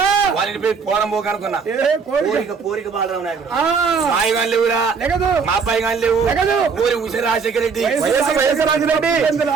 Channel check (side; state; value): left; quieter; 5.5 dB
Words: వాళ్ళని పోయి పోరంబోకు అనుకున్నా. కోరిక బాలరాం నాయకుడు. మాయి గారు లేవురా, మా అబ్బాయి గారు లేవు. ఊరి ఉష రాజశేఖర రెడ్డి.